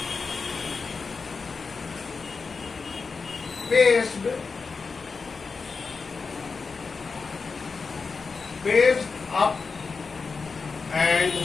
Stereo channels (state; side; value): quieter; right; 4.7 dB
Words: Paced up and